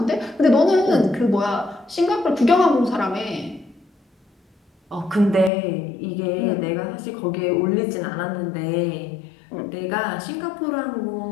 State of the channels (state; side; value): drops out; right; at 5.5 s